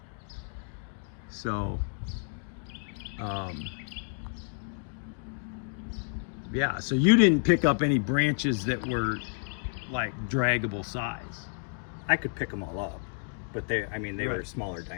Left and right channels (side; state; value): right; silent; 57 dB below the other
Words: So, yeah, so you didn't pick up any branches that were like draggable size. I could pick them all up, but they were smaller